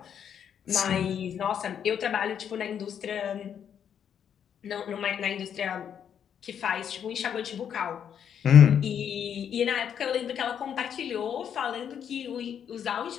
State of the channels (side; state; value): right; quieter; 8.5 dB